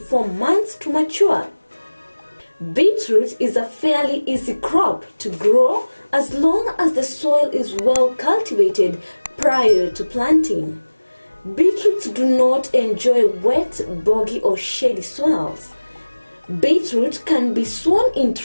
months to mature. Beetroot is a fairly easy crop to grow as long as the soil is well cultivated prior to planting. Beetroots do not enjoy wet, boggy or shady soils. Beetroot can be sown in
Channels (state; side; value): inverted; both; correlation -1.00